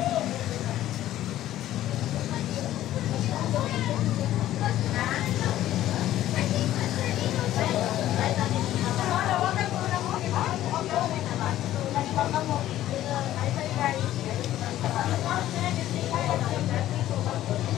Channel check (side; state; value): right; quieter; 13.5 dB